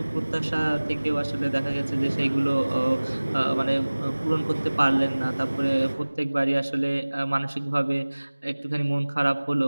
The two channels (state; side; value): inverted; both; correlation -1.00